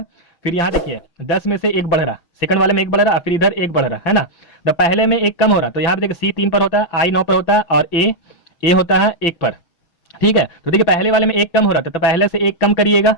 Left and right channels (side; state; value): right; late; 6.3 ms